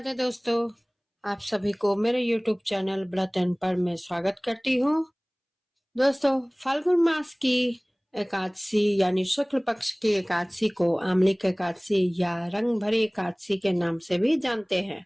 दोस्तों, आप सभी को मेरे YouTube चैनल व्रत एंड पर में स्वागत करती हूँ। दोस्तों, फाल्गुन मास की एकादशी यानी शुक्ल पक्ष की एकादशी को आमलिक एकादशी या रंग भरी एकादशी के नाम से भी जानते हैं।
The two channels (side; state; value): both; identical; correlation 1.00